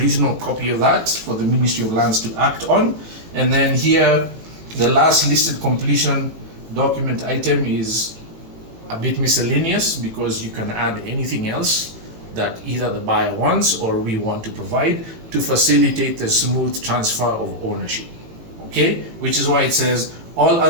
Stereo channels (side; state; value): left; late; 18 ms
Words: copy of that for the Ministry of Lands to act on. And then here, the last listed completion document item is a bit miscellaneous, because you can add anything else that either the buyer wants or we want to provide to facilitate the smooth transfer of ownership. Okay, which is why it says all